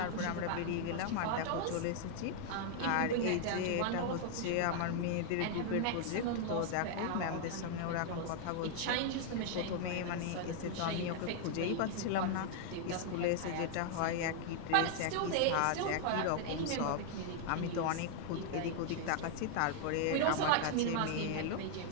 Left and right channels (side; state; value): both; different; correlation 0.00